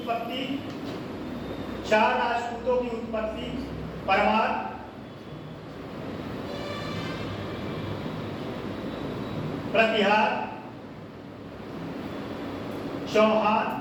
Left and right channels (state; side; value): identical; both; correlation 1.00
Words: उत्पत्ति परमार, प्रतिहार, चौहान